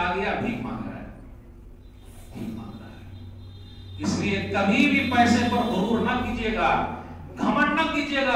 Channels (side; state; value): both; identical; correlation 1.00